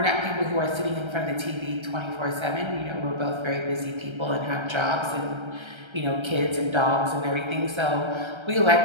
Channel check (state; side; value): late; left; 1.3 ms